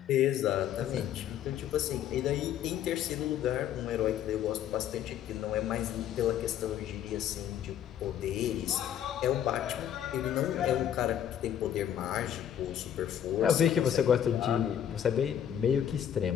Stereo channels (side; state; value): right; quieter; 10.0 dB